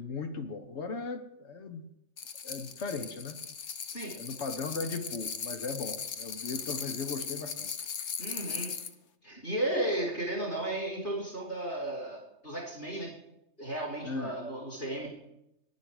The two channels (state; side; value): late; right; 3.3 ms